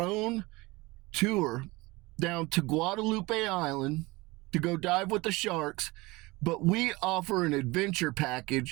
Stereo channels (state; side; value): quieter; left; 22.6 dB